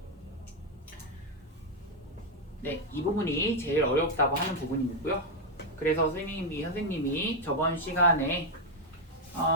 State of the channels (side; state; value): both; normal; correlation 0.02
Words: 네, 이 부분이 제일 어렵다고 하는 부분이고요. 그래서 선생님이 저번 시간에